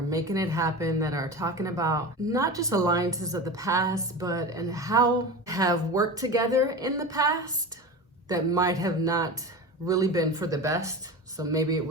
it happen, that are talking about not just alliances of the past, but and how have worked together in the past that might have not really been for the best. So maybe it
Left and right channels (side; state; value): both; normal; correlation 0.28